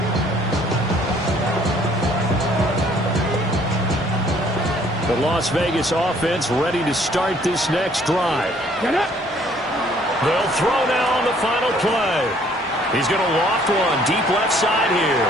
The Las Vegas offense ready to start this next drive. They'll throw now on the final play. He's going to loft one deep left side here.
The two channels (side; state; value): both; normal; correlation 0.61